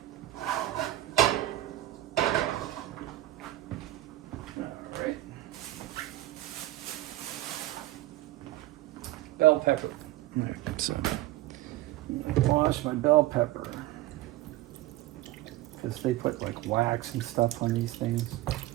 Alright. Bell pepper. Alright, so I wash my bell pepper. Because they put like wax and stuff on these things.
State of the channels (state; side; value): quieter; left; 16.0 dB